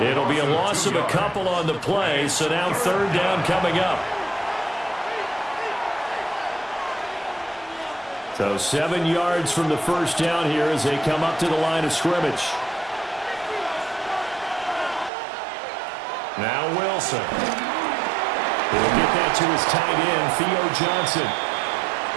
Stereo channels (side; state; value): left; drops out; at 15.1 s